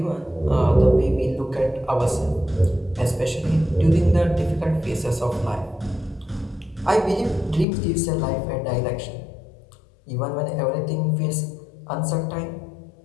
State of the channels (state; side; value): drops out; right; at 7.7 s